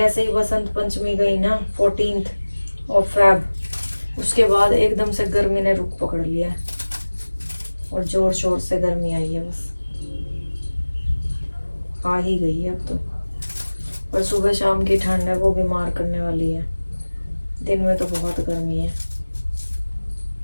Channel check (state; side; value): inverted; both; correlation -1.00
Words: ही बसंत पंचमी गई ना 14th ऑफ फेब, उसके बाद एकदम से गर्मी ने रुख पकड़ लिया है और जोर शोर से गर्मी आई है, बस आ ही गई है अब तो। पर सुबह शाम की ठंड है वो बीमार करने वाली है, दिन में तो बहुत गर्मी है।